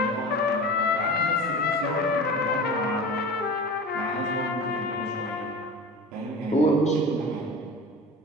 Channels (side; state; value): both; normal; correlation 0.34